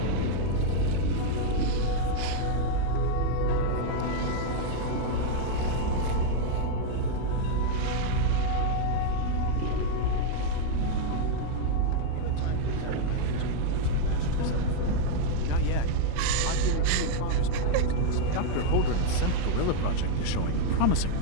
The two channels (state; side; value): different; both; correlation 0.00